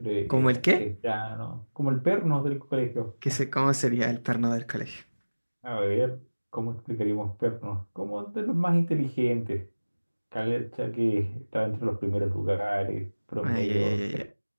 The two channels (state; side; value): inverted; both; correlation -1.00